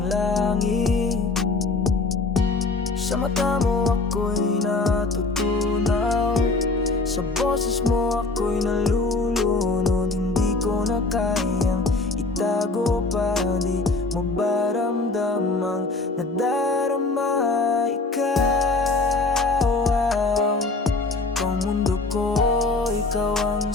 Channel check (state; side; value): quieter; right; 3.5 dB